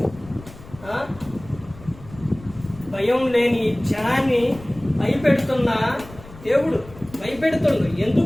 భయం లేని జనాన్ని భయపెడుతున్న దేవుడు భయపెడుతుండు.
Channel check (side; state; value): left; noise; rumble, 19 dB below the sound